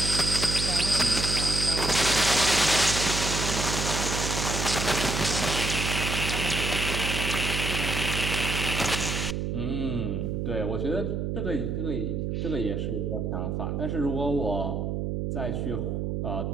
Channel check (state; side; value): noise; right; hum, 1 dB below the sound